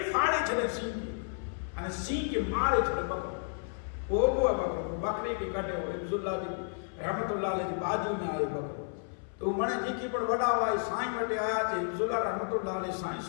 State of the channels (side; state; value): right; silent; 56 dB below the other